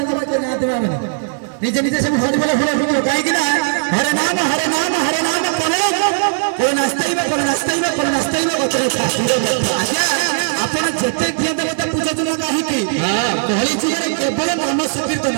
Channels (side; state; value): left; silent; digital silence